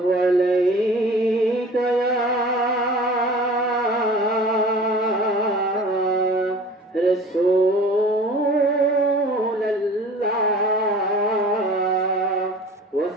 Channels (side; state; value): both; normal; correlation 0.43